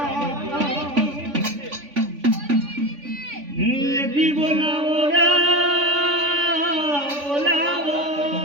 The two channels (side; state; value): left; late; 3.5 ms